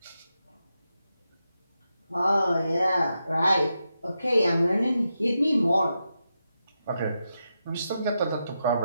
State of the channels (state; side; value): inverted; both; correlation -0.87